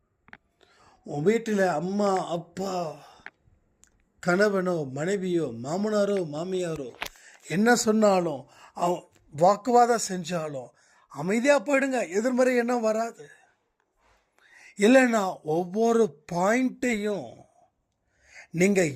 உன் வீட்டில் அம்மா அப்பா கணவனோ மனைவியோ மாமனாரோ மாமியாரோ என்ன சொன்னாலும் அவன் வாக்குவாதம் செஞ்சாலும் அமைதியாக போயிடுங்க, எதிர்மறை எண்ணம் வராது. இல்லைன்னா ஒவ்வொரு பாயிண்ட்டையும் நீங்கள்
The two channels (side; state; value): both; identical; correlation 1.00